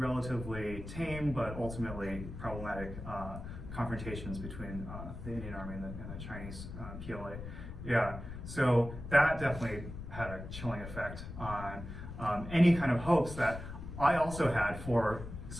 tame but ultimately problematic confrontations between the Indian Army and the Chinese PLA. Yeah, so that definitely had a chilling effect on any kind of hopes that I also had for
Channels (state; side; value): noise; left; rumble, 10 dB below the sound